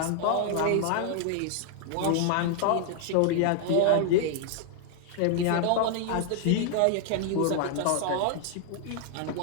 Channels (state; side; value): different; both; correlation 0.00